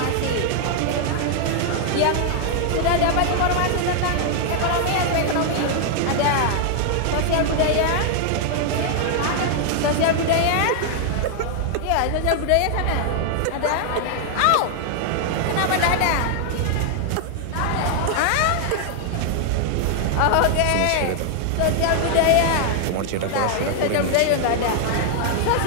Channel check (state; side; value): different; both; correlation 0.00